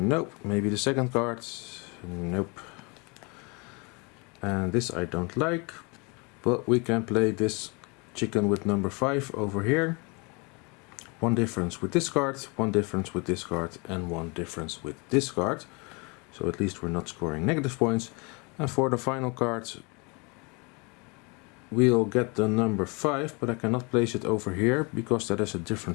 Maybe the second card. Nope. And this I don't like. But we can play this chicken with number 5 over here. One difference with this card, one difference with this card, and one difference with this card. So at least we're not scoring negative points. And for the final card, we'll get the number 5, but I cannot place it over here because that is a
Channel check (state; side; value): quieter; right; 30.2 dB